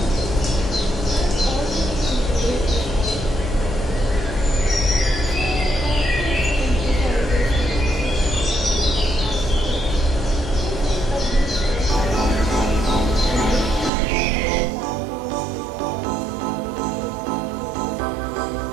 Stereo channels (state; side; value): drops out; left; at 13.9 s